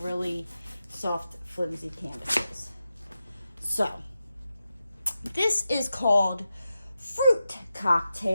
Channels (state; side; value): inverted; both; correlation -0.90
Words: soft, flimsy canvases. So this is called Fruit